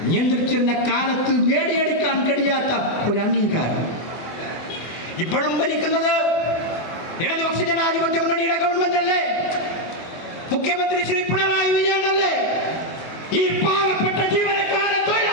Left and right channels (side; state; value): right; late; 24 ms